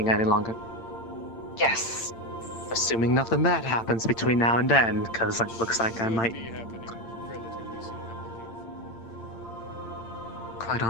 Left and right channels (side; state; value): right; late; 8.8 ms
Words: any longer. Yes. Assuming nothing bad happens between now and then, because it looks like I might... be happening relatively soon, I believe. Quite